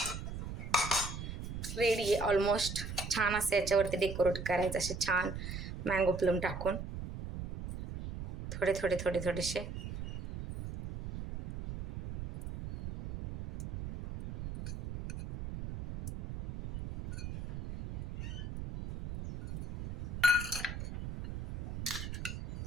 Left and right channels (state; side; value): noise; right; rumble, 7 dB below the sound